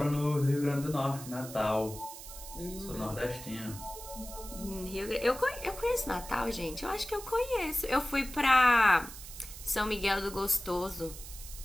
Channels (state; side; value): noise; right; hiss, 13 dB below the sound